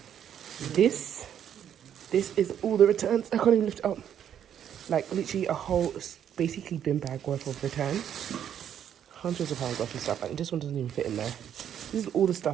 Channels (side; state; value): left; quieter; 9.5 dB